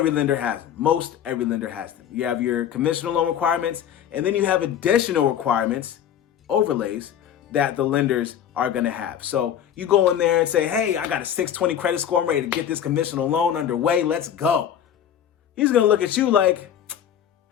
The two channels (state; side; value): quieter; right; 9.6 dB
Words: lender has them. Most every lender has them. You have your conventional loan requirements, and then you have additional requirements, overlays, that the lenders are going to have. So you go in there and say, hey, I got a 620 credit score. I'm ready to get this conventional loan underway. Let's go. He's going to look at you like,